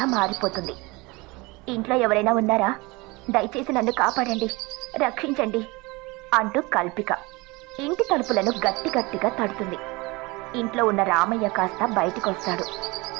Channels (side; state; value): left; quieter; 24.5 dB